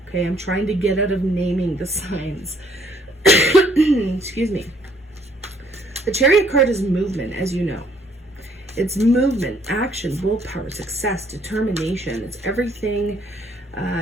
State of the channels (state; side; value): normal; both; correlation 0.65